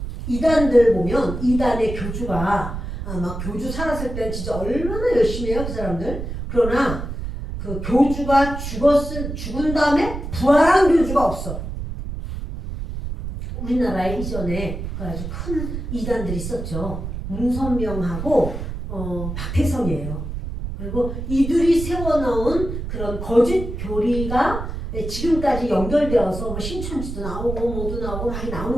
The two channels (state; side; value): noise; right; rumble, 6 dB below the sound